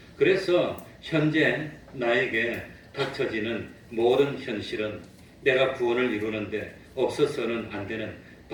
그래서 현재 나에게 닥쳐지는 모든 현실은 내가 구원을 이루는데 없어서는 안 되는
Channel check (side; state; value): both; identical; correlation 1.00